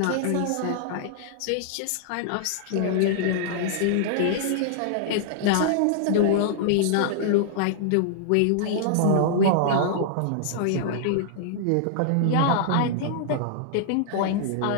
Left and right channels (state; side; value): different; both; correlation -0.01